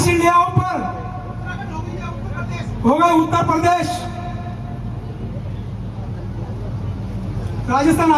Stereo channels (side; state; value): both; identical; correlation 1.00